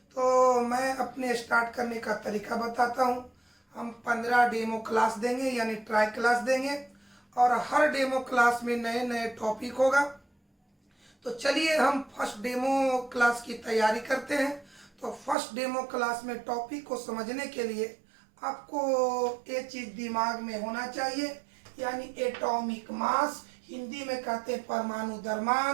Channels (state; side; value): drops out; left; at 15.4 s